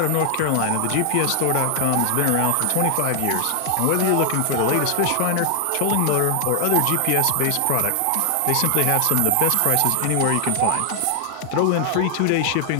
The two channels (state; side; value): different; both; correlation 0.00